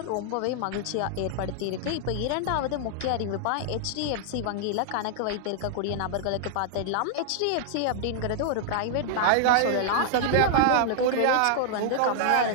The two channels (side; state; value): both; different; correlation -0.01